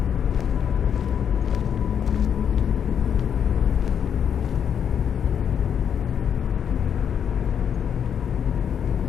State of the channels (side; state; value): right; quieter; 8.1 dB